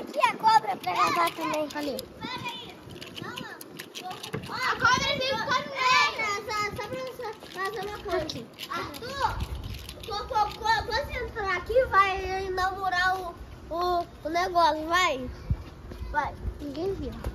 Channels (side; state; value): both; identical; correlation 1.00